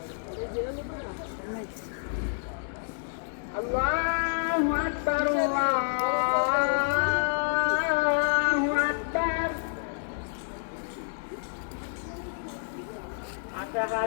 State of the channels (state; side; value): silent; right; digital silence